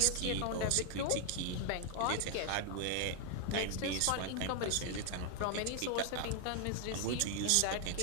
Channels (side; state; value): both; different; correlation 0.00